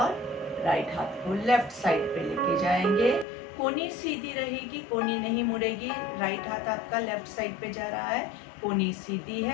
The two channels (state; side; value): drops out; right; at 3.2 s